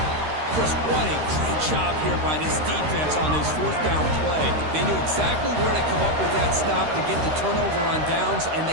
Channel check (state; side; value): late; left; 13 ms